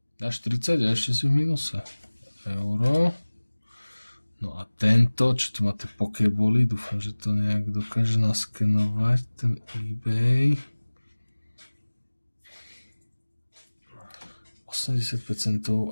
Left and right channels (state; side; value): inverted; both; correlation -1.00